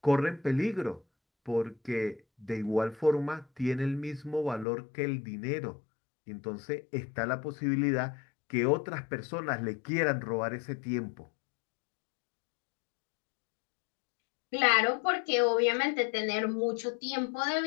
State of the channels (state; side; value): drops out; right; at 4.7 s